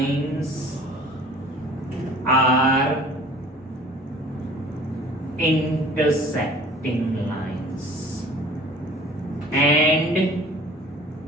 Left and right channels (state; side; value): normal; both; correlation 0.48